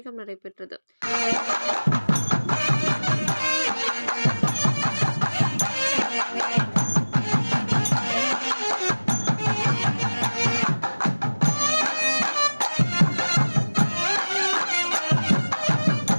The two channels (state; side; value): inverted; both; correlation -1.00